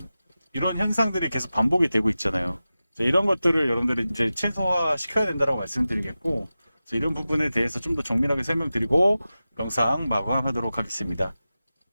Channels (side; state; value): both; inverted; correlation -0.95